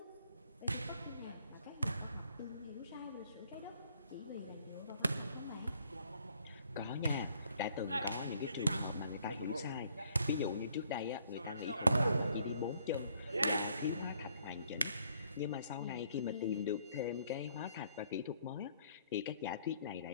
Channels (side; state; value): both; inverted; correlation -0.65